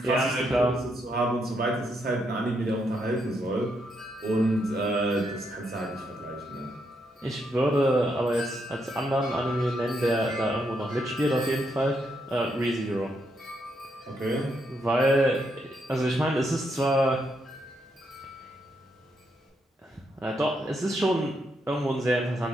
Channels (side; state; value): both; normal; correlation 0.78